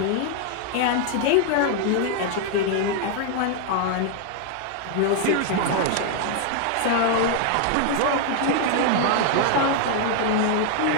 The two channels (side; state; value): both; different; correlation 0.00